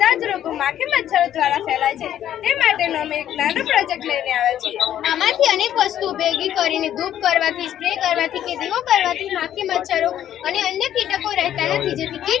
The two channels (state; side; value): quieter; right; 11.1 dB